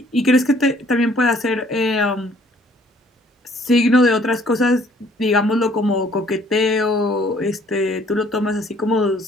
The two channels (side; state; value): both; normal; correlation 0.60